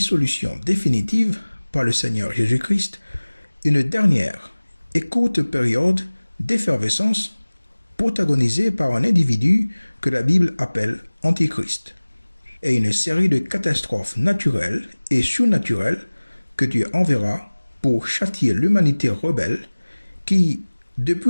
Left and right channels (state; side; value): inverted; both; correlation -1.00